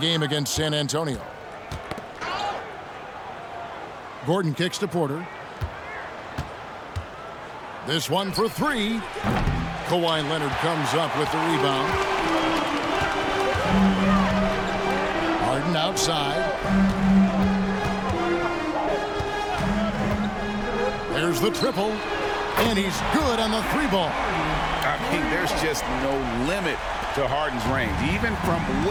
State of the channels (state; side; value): identical; both; correlation 1.00